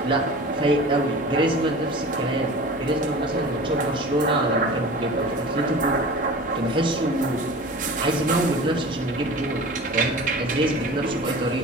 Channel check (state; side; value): normal; both; correlation 0.38